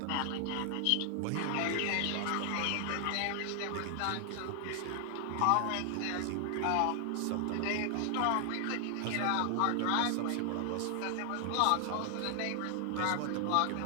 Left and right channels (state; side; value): different; both; correlation 0.00